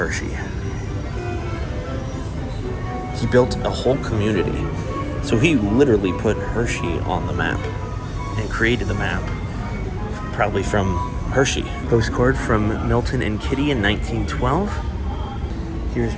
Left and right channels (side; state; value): both; identical; correlation 1.00